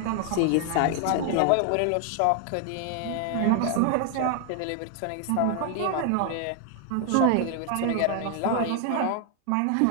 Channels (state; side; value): different; both; correlation 0.00